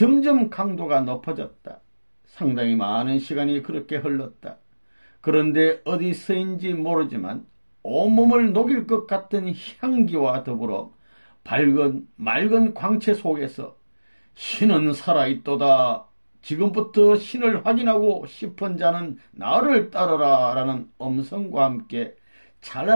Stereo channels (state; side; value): inverted; both; correlation -1.00